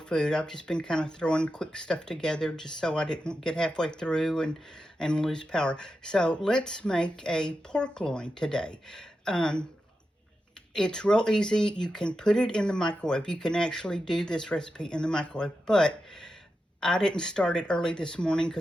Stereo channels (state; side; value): normal; both; correlation 0.89